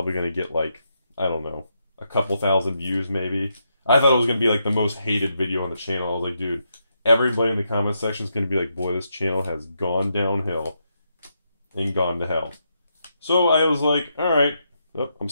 going to get like, I don't know, a couple thousand views maybe. I thought it was going to be like the most hated video on the channel. I was like, dude, everybody in the comment section is going to be like, boy, this channel has gone downhill and gone to hell. So I was like, all right, oh, I'm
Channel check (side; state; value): both; inverted; correlation -0.81